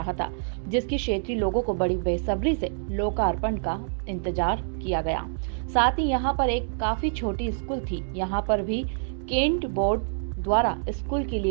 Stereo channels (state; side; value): silent; left; digital silence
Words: था, जिसकी क्षेत्रीय लोगों को बड़ी बेसब्री से लोकार्पण का इंतजार किया गया। साथ ही यहाँ पर एक काफी छोटी स्कूल थी। यहाँ पर भी केंट बोर्ड द्वारा स्कूल के